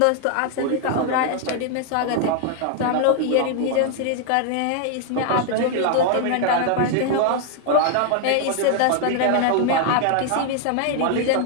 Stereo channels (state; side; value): different; both; correlation 0.00